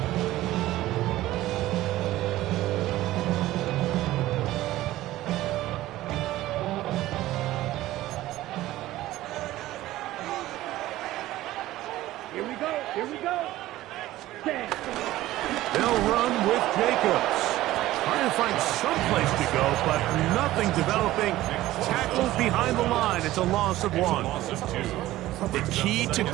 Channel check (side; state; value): left; quieter; 15.9 dB